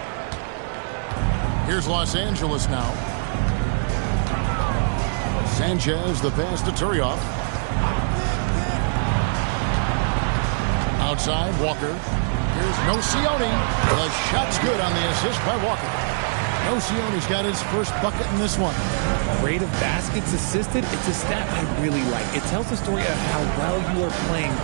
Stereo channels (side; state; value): left; silent; digital silence